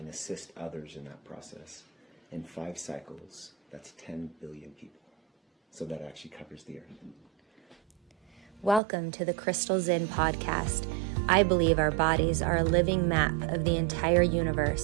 assist others in that process, in 5 cycles, that's 10 billion people. So that actually covers the earth. Welcome to the Crystal Zen podcast. I believe our bodies are a living map of the entire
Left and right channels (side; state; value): left; drops out; at 8.8 s